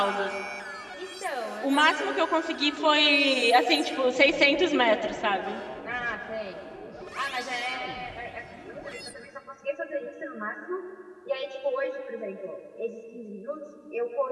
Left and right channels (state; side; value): identical; both; correlation 1.00